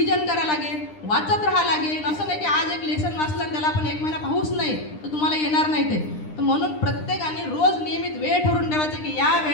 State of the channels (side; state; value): right; late; 9.9 ms